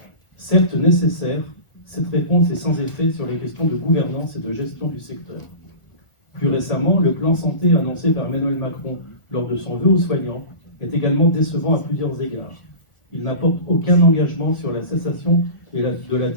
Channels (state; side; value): late; right; 1.4 ms